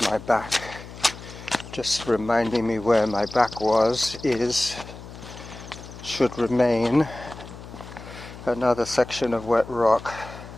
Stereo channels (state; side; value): noise; left; hum, 15 dB below the sound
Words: my back, just reminding me where my back should remain. Another section of wet rock.